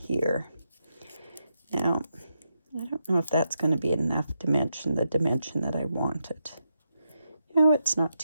Now, I don't know if that's going to be enough dimension, the dimension that I wanted. No, it's not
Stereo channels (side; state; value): both; inverted; correlation -0.84